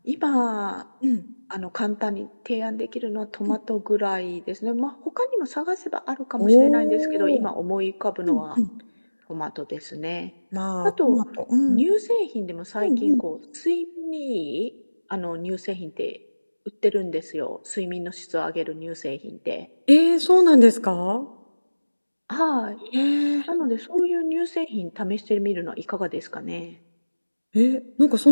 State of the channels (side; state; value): both; inverted; correlation -1.00